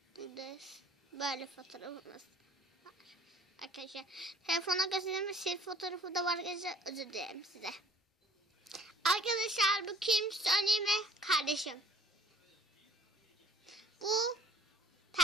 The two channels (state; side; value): normal; both; correlation 0.54